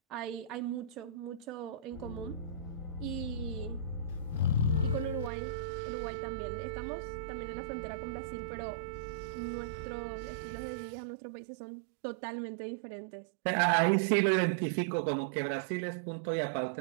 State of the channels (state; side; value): drops out; left; at 5.3 s